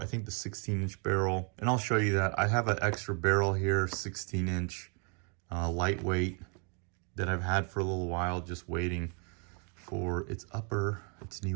think, the 16-inch barrel. And I'll show you that. I have an extra barrel here, 16-inch. Lightweight that I've had for a little while, just waiting for its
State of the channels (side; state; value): left; quieter; 37.0 dB